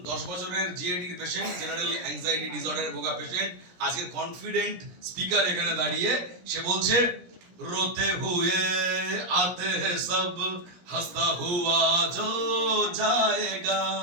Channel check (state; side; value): late; left; 17 ms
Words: 10 বছরের জিএডির পেশেন্ট, জেনারেল অ্যাংজাইটি ডিসঅর্ডারে ভোগা পেশেন্ট, আজকের কনফিডেন্ট স্পিকার এখানে দাঁড়িয়ে সে বলছে, रोते हुए आते हैं सब, हंसता हुआ जो जाएगा।